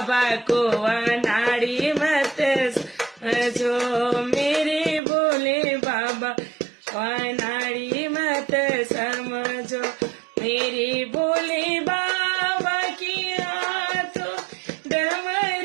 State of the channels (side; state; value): left; drops out; at 5.0 s